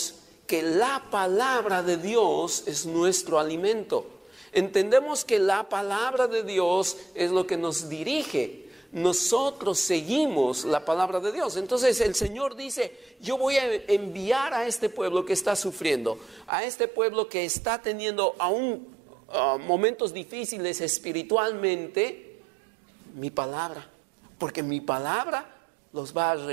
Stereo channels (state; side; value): drops out; left; at 16.5 s